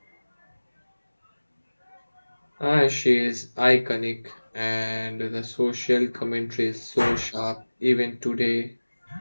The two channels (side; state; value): both; inverted; correlation -1.00